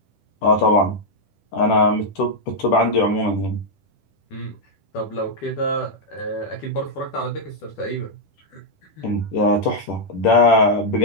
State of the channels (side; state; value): right; late; 10 ms